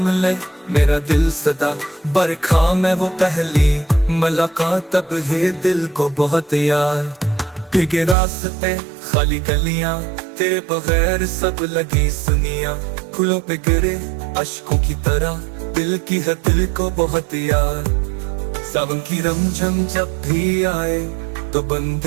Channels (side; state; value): left; drops out; at 8.2 s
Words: ले मेरा दिल सदा। बरखा में वो पहली मुलाकात, तब है दिल को बहुत याद। भीगे रास्ते खाली गलियां, तेरे बगैर सब लगी सुनिया। फूलों पे गिरे अश्कों की तरह, दिल की है दिल को बहुत याद। सावन की रमझम जब भी आए तो बन